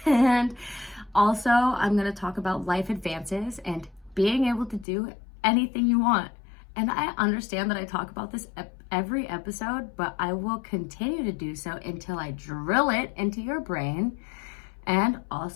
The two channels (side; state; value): right; drops out; at 4.9 s